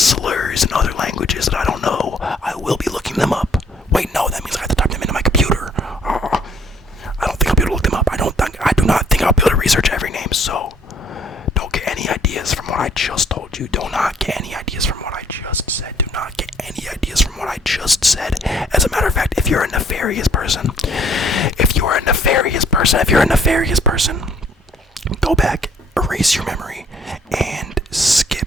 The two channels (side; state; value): both; normal; correlation 0.61